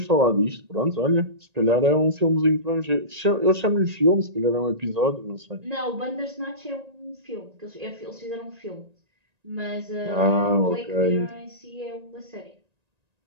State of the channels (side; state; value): left; late; 1.9 ms